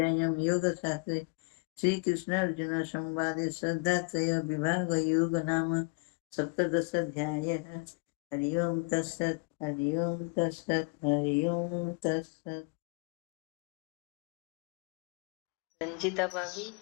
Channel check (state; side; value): quieter; right; 31.2 dB